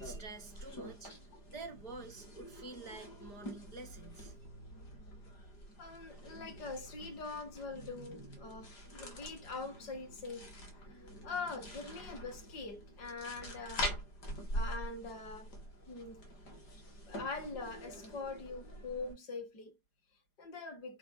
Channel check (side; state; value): right; late; 4.9 ms